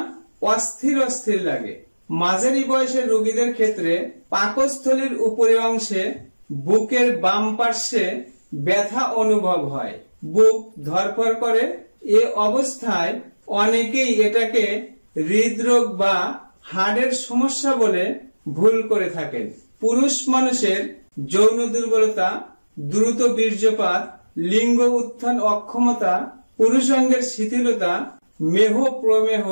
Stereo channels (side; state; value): both; inverted; correlation -1.00